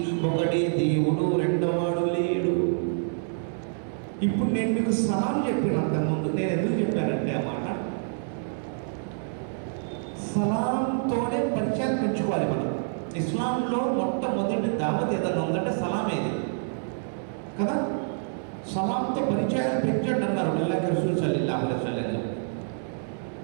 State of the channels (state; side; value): silent; left; 60 dB below the other